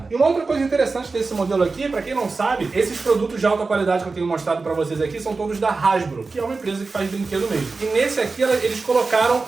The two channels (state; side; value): quieter; left; 4.0 dB